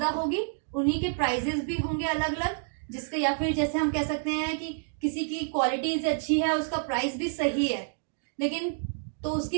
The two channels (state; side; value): silent; left; digital silence